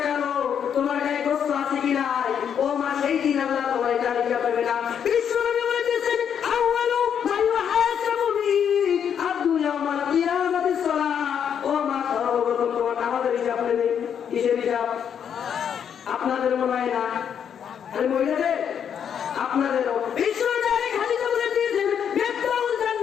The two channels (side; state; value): right; quieter; 8.2 dB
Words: কালো, তোমার গায়ে গোস্ত আছে কি নাই, ও মা সেই দিন আল্লাহ তোমার এটা হিসাব নেবে না। বিশ্বনবী বলেছেন আউয়ালু মা ইউহাসাবু বিহি আবদু ইয়াউমাল কিয়ামাতিস সালাত। ও মা সর্বপ্রথম তোমার নামাজের হিসাব নেবে। কিসের হিসাব? আপনাদের মনে হয় না, আরে মহিলাদের আপনাদেরও। বিশ্বনবী খালিদা বলে দিয়েছেন বেতাউল